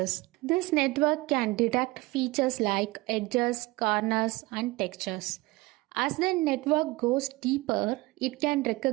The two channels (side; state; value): left; quieter; 21.8 dB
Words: This network can detect features like edges, corners, and textures. As the network goes deeper, it can